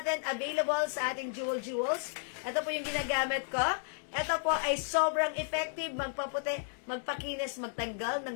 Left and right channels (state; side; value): silent; right; digital silence